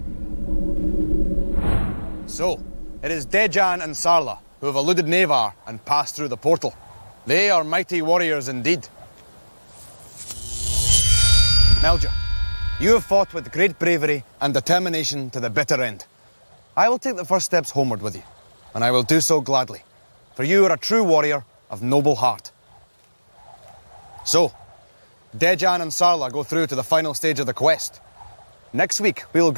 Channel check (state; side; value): inverted; both; correlation -1.00